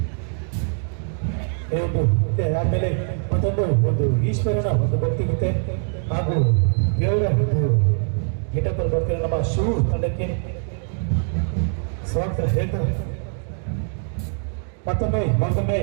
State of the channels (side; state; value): left; silent; 55 dB below the other